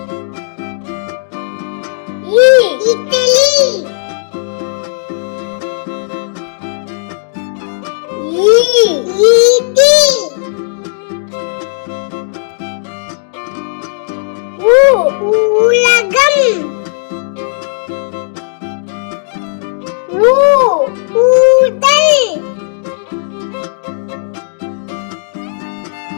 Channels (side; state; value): right; silent; digital silence